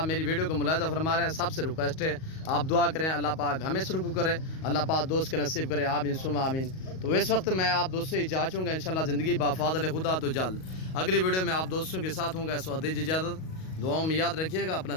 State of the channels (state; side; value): late; right; 38 ms